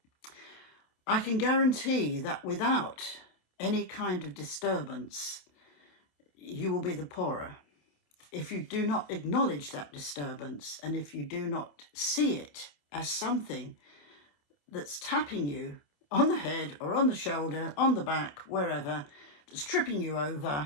I can guarantee that without any kind of disturbance, you will be the poorer. If you do not acknowledge that disturbance and if you do not see it as something that's tapping you on the head or on the shoulder, on the back, wherever, that's tripping you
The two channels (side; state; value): right; late; 28 ms